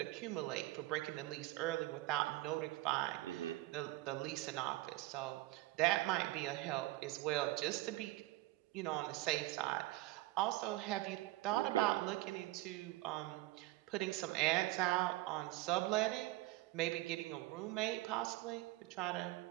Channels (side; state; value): left; quieter; 18.2 dB